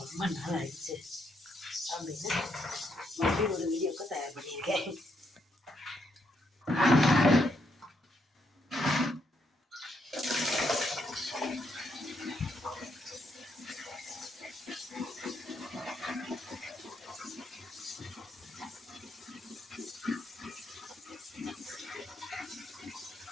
ரொம்ப நாள் ஆயிடுச்சு அப்படின்னு மறுபடியும் ஒரு வீடியோக்கு தயார் பண்ணியிருக்கேன்.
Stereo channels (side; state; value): both; normal; correlation 0.77